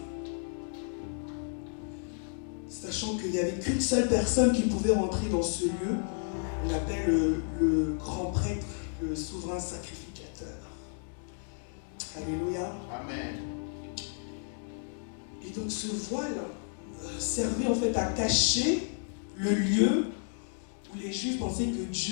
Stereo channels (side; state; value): right; silent; 56 dB below the other